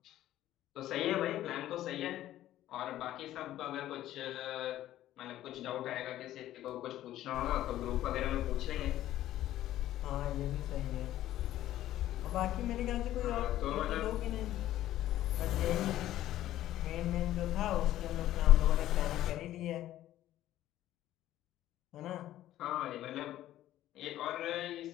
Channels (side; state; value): right; quieter; 13.5 dB